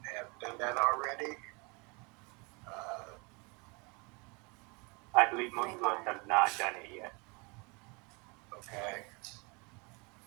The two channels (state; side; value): quieter; left; 29.9 dB